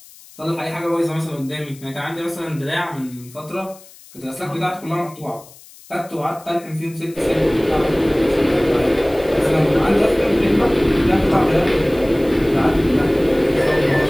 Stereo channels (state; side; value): noise; left; hiss, 22 dB below the sound